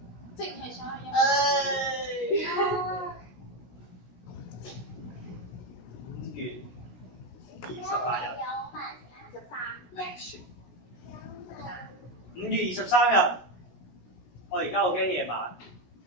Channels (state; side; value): late; right; 17 ms